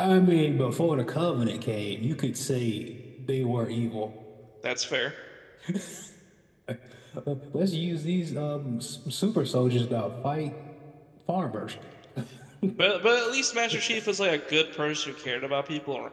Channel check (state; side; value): identical; both; correlation 1.00